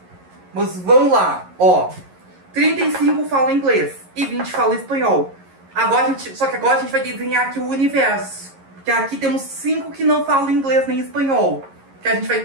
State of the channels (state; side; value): late; left; 11 ms